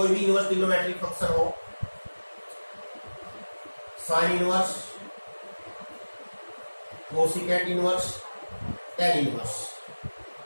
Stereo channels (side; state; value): both; inverted; correlation -1.00